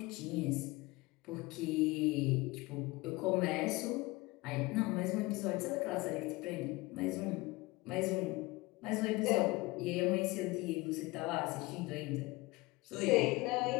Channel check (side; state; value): right; quieter; 22.1 dB